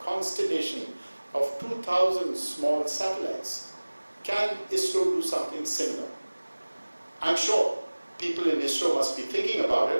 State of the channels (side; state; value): both; inverted; correlation -1.00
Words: constellation of 2,000 small satellites, can ISRO do something similar? I'm sure people in ISRO must be thinking about